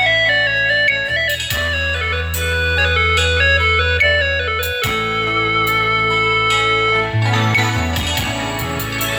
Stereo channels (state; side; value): identical; both; correlation 1.00